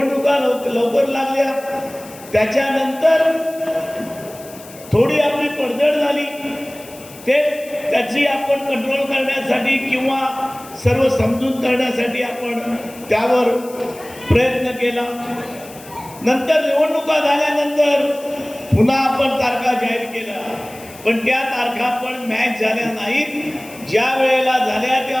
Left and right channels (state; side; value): noise; left; hiss, 19 dB below the sound